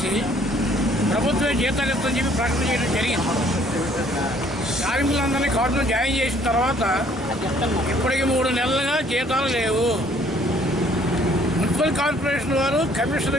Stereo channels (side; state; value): both; normal; correlation 0.61